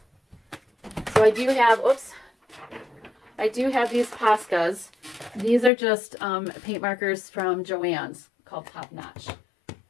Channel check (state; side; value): drops out; right; at 5.7 s